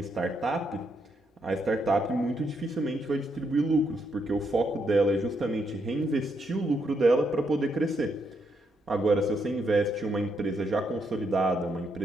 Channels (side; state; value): both; normal; correlation 0.78